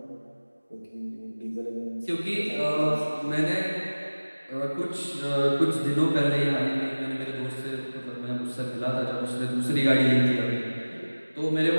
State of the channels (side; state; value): both; inverted; correlation -1.00